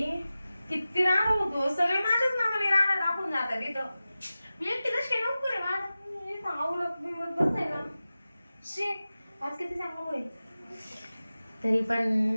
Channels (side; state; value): both; inverted; correlation -0.95